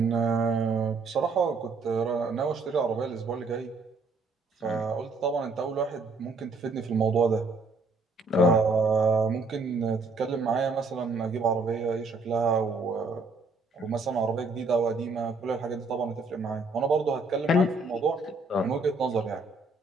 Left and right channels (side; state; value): left; quieter; 3.5 dB